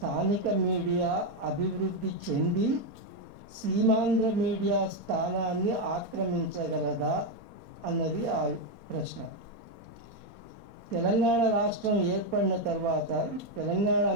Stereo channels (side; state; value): left; late; 4.3 ms